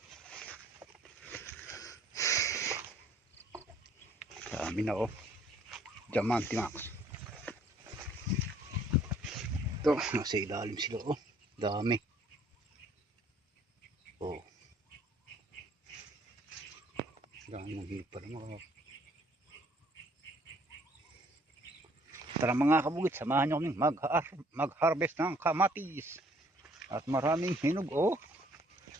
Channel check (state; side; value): normal; both; correlation 0.61